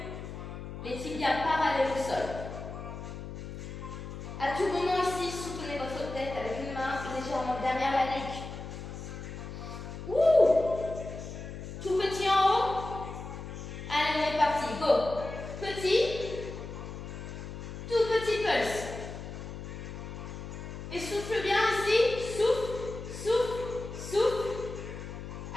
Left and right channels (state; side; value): noise; left; hum, 9 dB below the sound